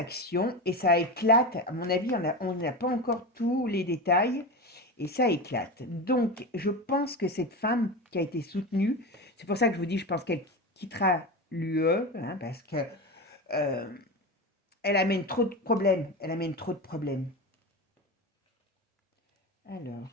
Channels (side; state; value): both; normal; correlation 0.22